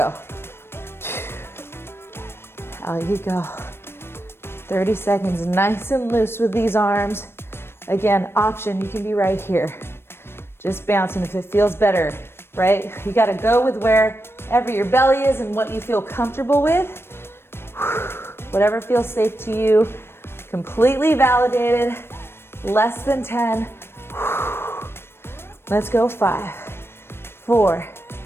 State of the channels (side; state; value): right; late; 0.12 ms